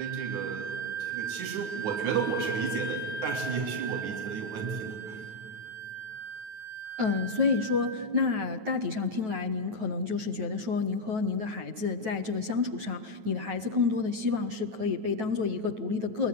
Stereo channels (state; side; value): late; left; 9.3 ms